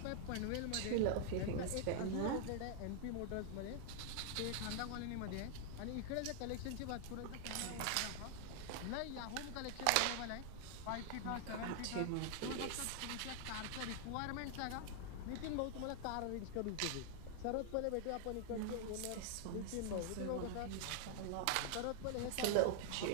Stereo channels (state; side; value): different; both; correlation 0.00